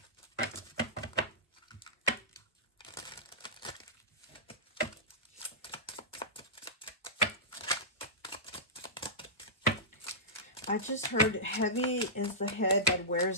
I just heard heavy is the head that wears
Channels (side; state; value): both; normal; correlation -0.17